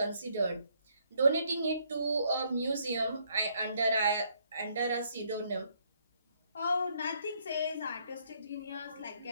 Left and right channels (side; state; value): both; inverted; correlation -0.70